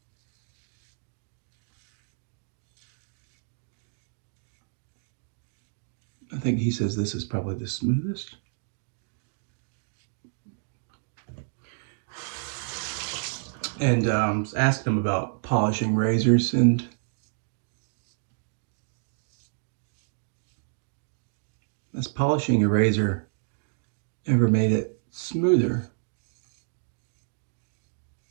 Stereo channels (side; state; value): left; silent; digital silence